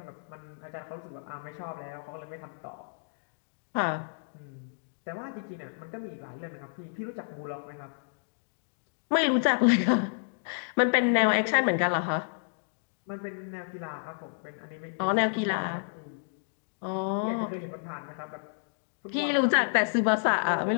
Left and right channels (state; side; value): silent; right; digital silence